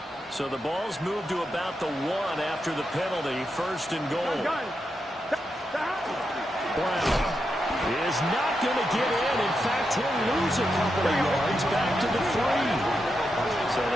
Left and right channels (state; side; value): normal; both; correlation 0.85